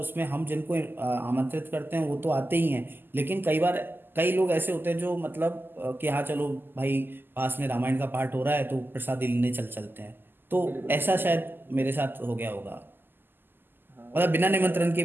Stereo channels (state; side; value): late; left; 0.095 ms